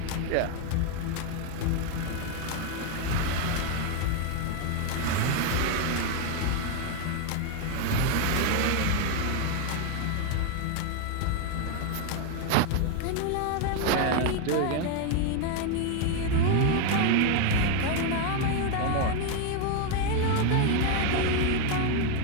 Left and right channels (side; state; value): both; different; correlation 0.01